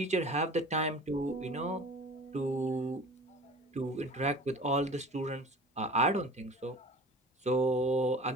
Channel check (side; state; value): both; normal; correlation 0.41